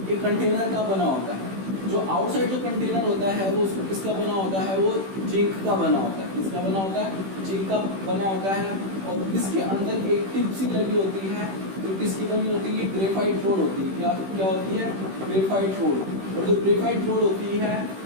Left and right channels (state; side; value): late; left; 16 ms